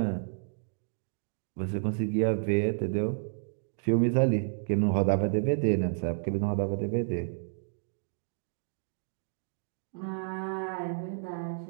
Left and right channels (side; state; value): left; silent; digital silence